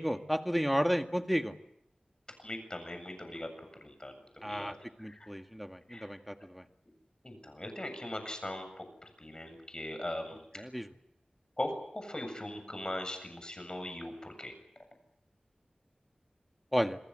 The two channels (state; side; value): normal; both; correlation 0.98